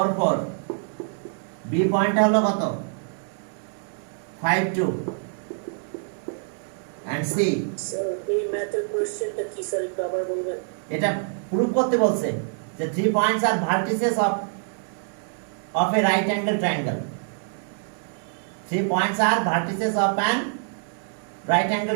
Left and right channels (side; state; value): left; silent; digital silence